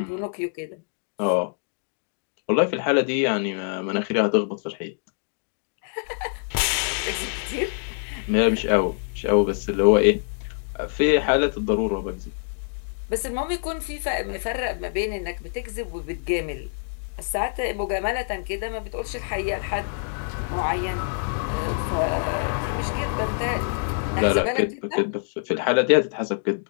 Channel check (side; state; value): right; silent; digital silence